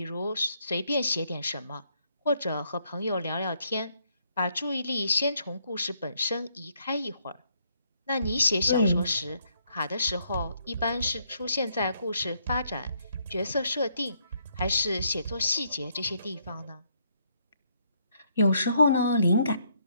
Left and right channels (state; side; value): inverted; both; correlation -0.72